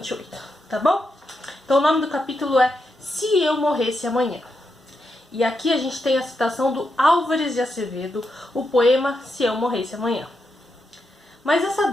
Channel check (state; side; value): normal; both; correlation 0.84